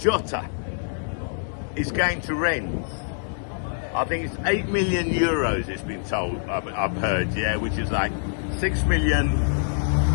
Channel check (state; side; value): silent; right; 62 dB below the other